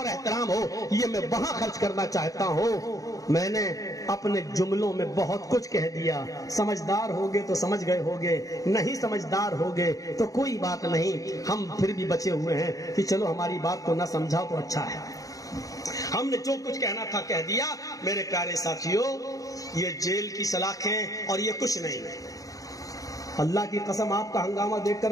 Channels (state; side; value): late; right; 0.17 ms